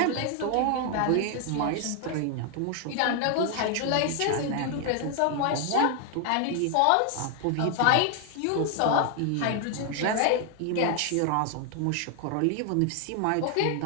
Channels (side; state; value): both; different; correlation 0.00